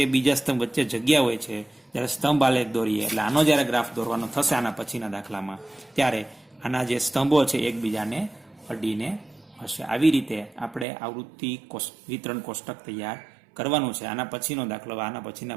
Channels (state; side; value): drops out; left; at 10.9 s